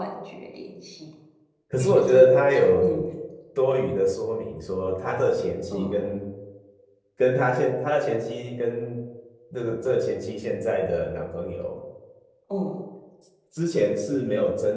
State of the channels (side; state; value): both; identical; correlation 1.00